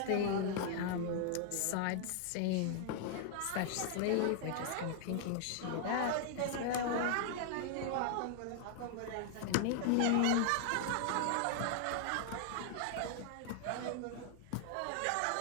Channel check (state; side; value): different; both; correlation 0.00